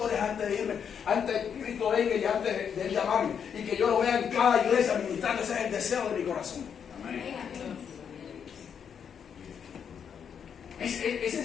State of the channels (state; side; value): quieter; right; 7.5 dB